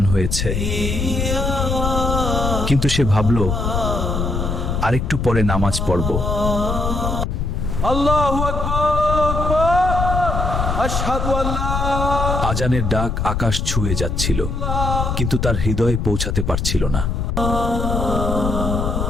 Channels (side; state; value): left; noise; rumble, 1 dB below the sound